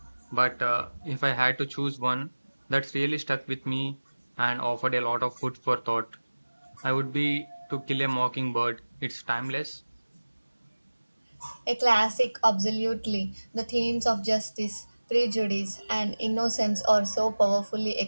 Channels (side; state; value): both; inverted; correlation -1.00